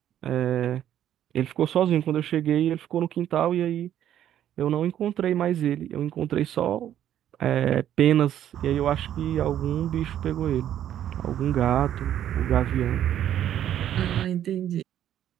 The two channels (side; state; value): left; quieter; 11.0 dB